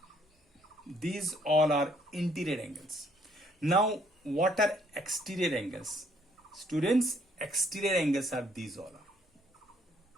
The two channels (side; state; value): both; normal; correlation 0.66